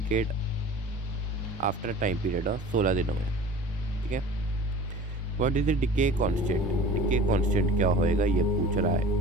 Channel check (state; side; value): normal; both; correlation 0.41